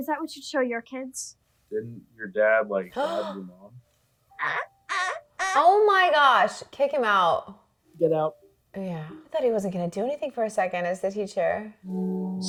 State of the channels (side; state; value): both; identical; correlation 1.00